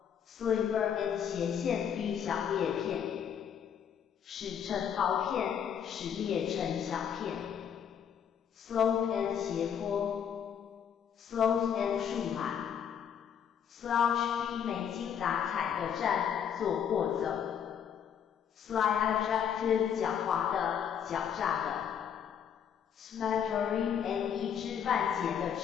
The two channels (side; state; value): right; quieter; 8.3 dB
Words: sliver and 斜线 v 小裂片使成薄片使裂成小片 slope and 斜坡 slope and 树懒 slouch v 没精打采的站坐或走 sly adjective 狡猾的狡诈的 smattering and 一知半解的